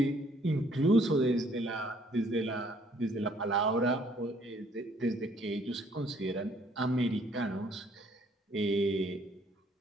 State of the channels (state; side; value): normal; both; correlation 0.63